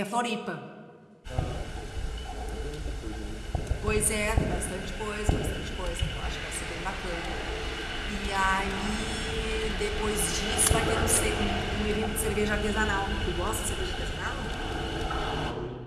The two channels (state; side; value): identical; both; correlation 1.00